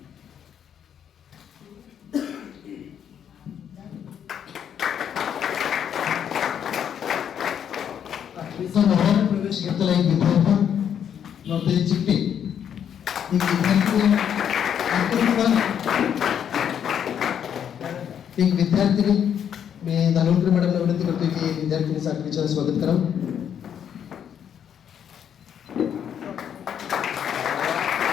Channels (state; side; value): quieter; right; 8.8 dB